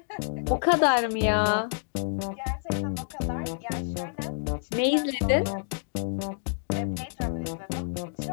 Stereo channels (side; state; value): right; silent; digital silence